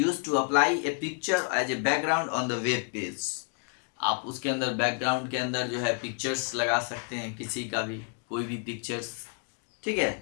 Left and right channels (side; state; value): right; quieter; 39.6 dB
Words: to apply a picture as a background on the web page. आप उसके अंदर बैकग्राउंड के अंदर जो है पिक्चर्स लगा सकते हैं, किसी का भी कोई भी पिक्चर्स, ठीक